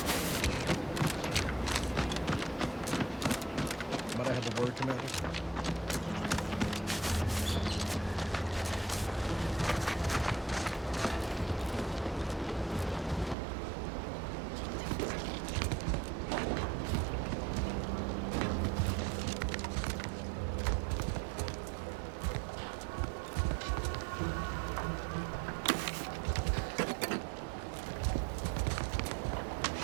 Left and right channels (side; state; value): left; drops out; at 13.4 s